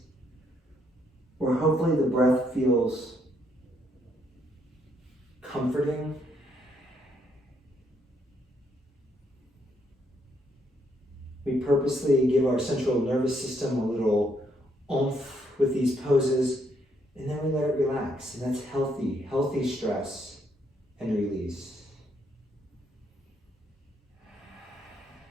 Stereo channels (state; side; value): normal; both; correlation 0.73